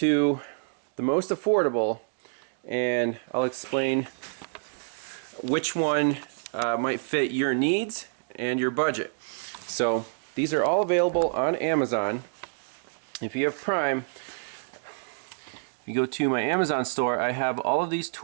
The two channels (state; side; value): silent; left; digital silence